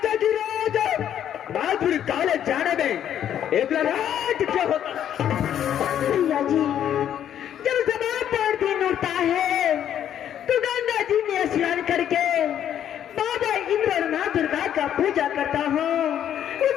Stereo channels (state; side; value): quieter; right; 10.1 dB